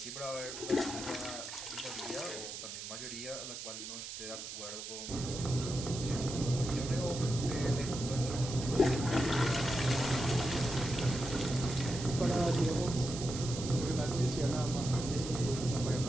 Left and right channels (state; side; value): noise; right; hiss, 8 dB below the sound